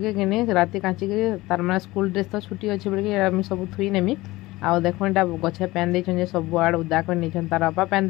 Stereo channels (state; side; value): quieter; right; 19.4 dB